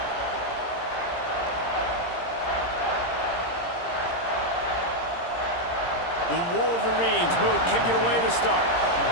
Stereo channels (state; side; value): late; right; 17 ms